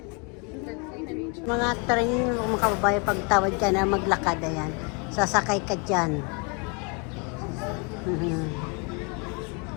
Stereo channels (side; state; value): right; quieter; 33.8 dB